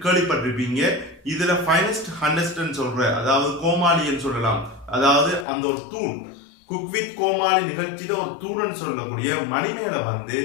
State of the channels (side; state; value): right; drops out; at 5.5 s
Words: கேள்விப்பட்டிருப்பீங்க. இதுல ஃபைனஸ்ட் ஹண்டஸ்ட்ன்னு சொல்ற அதாவது கோமாளின்னு சொல்லலாம். அதாவது அந்த ஒரு தூண் குக் வித் கோமாளி நிகழ்ச்சியில ஒரு தூணன்னு சொல்லக்கூடிய மணிமேல வந்து